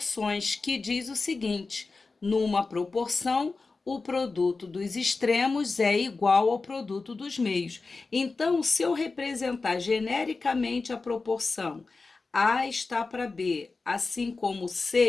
que diz o seguinte: numa proporção, o produto dos extremos é igual ao produto dos meios. Então, se eu representar genericamente a proporção A está para B, assim como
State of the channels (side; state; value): right; quieter; 3.9 dB